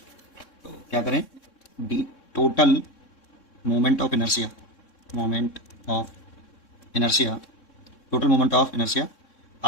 तो क्या करें? D total moment of inertia, moment of inertia, total moment of inertia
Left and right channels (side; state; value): right; late; 3.6 ms